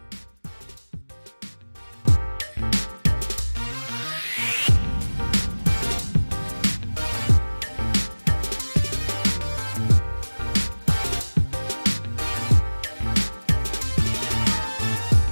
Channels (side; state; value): both; inverted; correlation -1.00